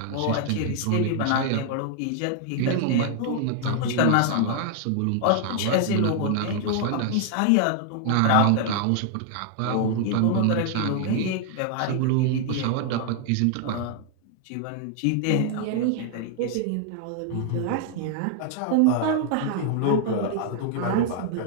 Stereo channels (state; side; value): different; both; correlation 0.00